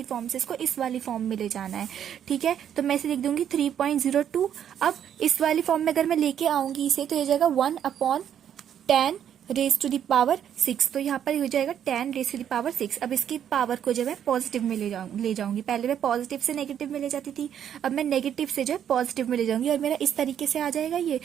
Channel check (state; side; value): quieter; left; 9.4 dB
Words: फॉर्म से इसको इस वाली फॉर्म में ले जाना है। ठीक है, तो मैं इसे लिख दूंगी 3.02। अब इस वाली फॉर्म में अगर मैं लेके आऊंगी इसे, तो ये जाएगा 1/10⁻⁶। तो यहाँ पर हो जाएगा 10⁻⁶। अब इसकी पावर को जो है पॉजिटिव में ले जाऊंगी। पहले मैं पॉजिटिव से नेगेटिव में ले जाती थी, अब मैं नेगेटिव से जो है पॉजिटिव में ले जाऊंगी और मेरा इस तरीके से आ जाएगा ये।